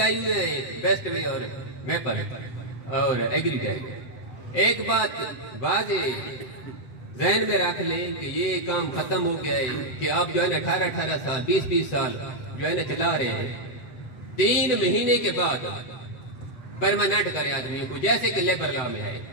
ہوئے ہیں بیسٹ وے اور میپل, اور ایگریٹیک۔ ایک بات واضح ذہن میں رکھ لیں کہ یہ کام ختم ہو گیا ہے کہ آپ جو ہے نا 18 سال 20 سال جو ہے نا چلا رہے ہیں، 3 مہینے کے بعد پرماننٹ کریں آدمیوں کو، جیسے کہ لیبر لا میں ہے۔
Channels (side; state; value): right; late; 8.0 ms